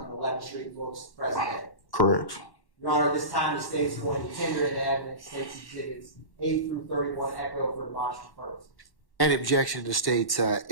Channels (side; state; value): right; late; 1.1 ms